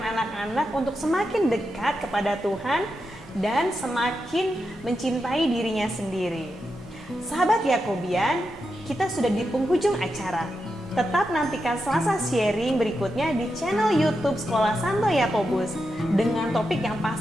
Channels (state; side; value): normal; both; correlation 0.87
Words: anak-anak untuk semakin dekat kepada Tuhan dan semakin mencintai dirinya sendiri. Sahabat Yakobian, kita sudah di penghujung acara. Tetap nantikan Selasa sharing berikutnya di channel YouTube Sekolah Santo Yakobus dengan topik yang